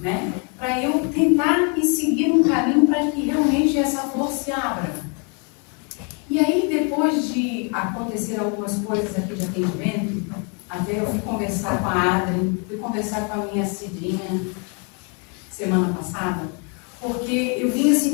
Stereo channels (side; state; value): right; quieter; 36.6 dB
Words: né? Para eu tentar ir seguir um caminho para que realmente essa flor se abra. E aí, depois de acontecer algumas coisas aqui de atendimento, até eu fui conversar com a Adri, fui conversar com a minha Cidinha semana passada, porque eu vinha